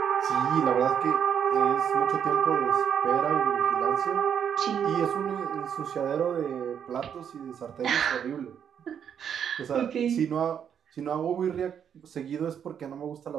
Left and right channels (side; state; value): left; quieter; 8.3 dB